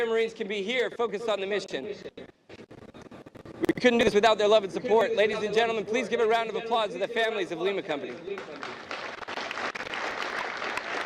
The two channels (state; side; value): identical; both; correlation 1.00